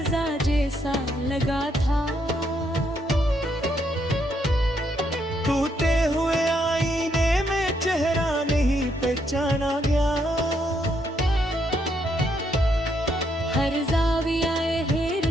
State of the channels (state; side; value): normal; both; correlation 0.75